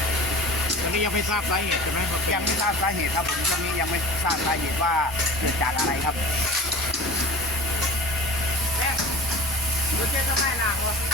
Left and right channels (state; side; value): normal; both; correlation 0.38